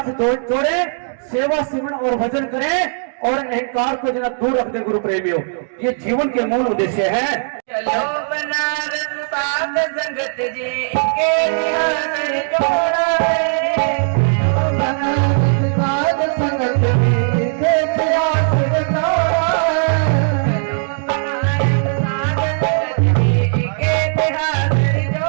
जोड़े, सेवा सिमरन और भजन करें और अहंकार को जना दूर रख दे। गुरु प्रेमियों, ये जीवन के मूल उद्देश्य है। चलो बनारस साध संगत जी के ध्यान जोड़ा है, बनारस साध संगत जी के ध्यान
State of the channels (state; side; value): silent; left; digital silence